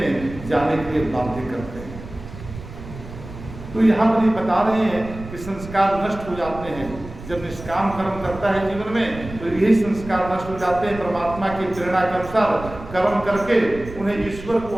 जाने के लिए बाध्य करते हैं। तो यहाँ पर ये बता रहे हैं कि संस्कार नष्ट हो जाते हैं जब निष्काम कर्म करता है जीवन में, तो यही संस्कार नष्ट हो जाते हैं। परमात्मा की प्रेरणा के अनुसार कर्म करके उन्हें ईश्वर को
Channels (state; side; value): noise; right; rumble, 13 dB below the sound